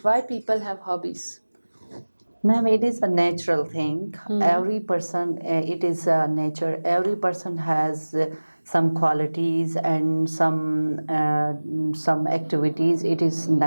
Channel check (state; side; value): inverted; both; correlation -1.00